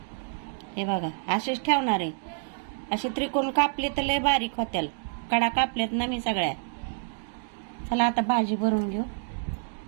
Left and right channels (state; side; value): silent; left; 59 dB below the other